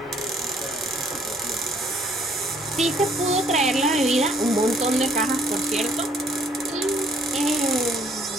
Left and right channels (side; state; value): both; normal; correlation 0.63